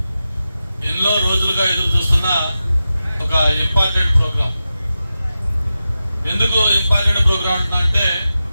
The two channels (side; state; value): both; inverted; correlation -0.92